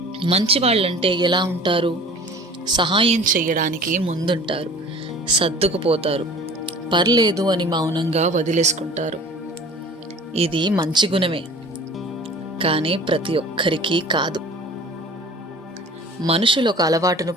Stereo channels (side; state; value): both; normal; correlation 0.44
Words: మంచి వాళ్ళంటే ఎలా ఉంటారు? సహాయం చేయడానికి ముందుంటారు, సర్దుకుపోతారు, పర్లేదు అని మౌనంగా వదిలేసుకుంటారు. ఇది మంచి గుణమే, కానీ ప్రతి ఒక్కరికి కాదు. మనుషులు ఒక అలవాటును